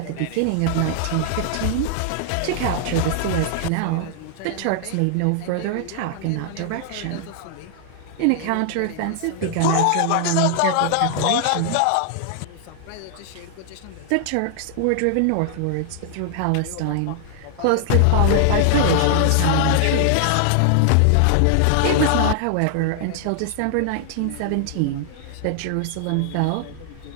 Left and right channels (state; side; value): different; both; correlation 0.00